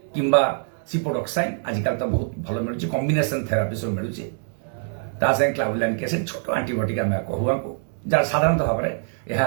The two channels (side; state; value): left; silent; 59 dB below the other